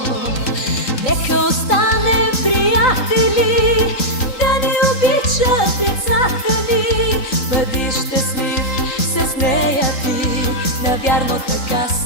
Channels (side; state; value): right; late; 3.7 ms